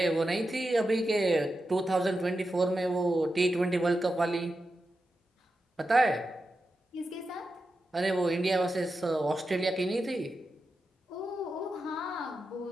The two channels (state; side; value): normal; both; correlation 0.90